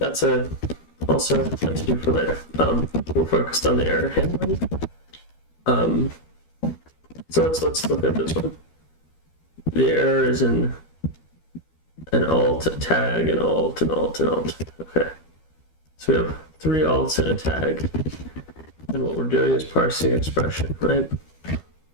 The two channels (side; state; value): right; late; 13 ms